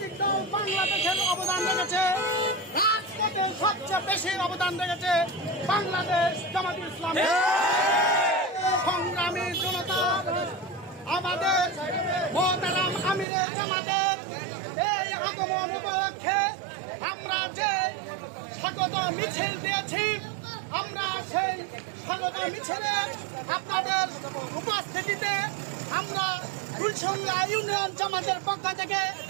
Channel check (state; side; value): drops out; left; at 13.2 s